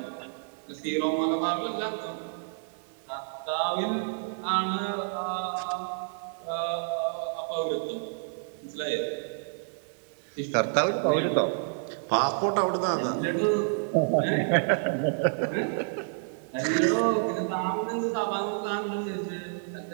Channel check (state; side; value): silent; left; 58 dB below the other